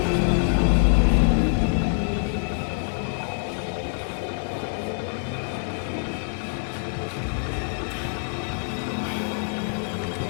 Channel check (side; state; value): right; silent; 55 dB below the other